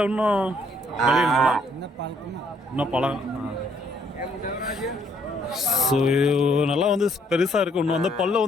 இன்னும் இன்னும் பழகம்? ஸோ நல்லா வந்து பெருசாக இருக்குது. இன்னும் வந்து பல்ல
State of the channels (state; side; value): normal; both; correlation 0.67